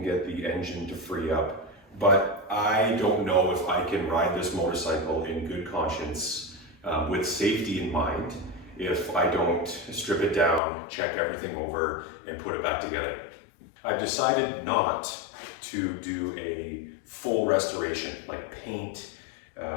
get the engine to free up. But I don't know if I can ride this motorcycle in good conscience with safety in mind if I don't strip it down, check everything over, and put it back together. I've decided not to do a full restoration, like paint,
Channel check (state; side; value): drops out; right; at 10.6 s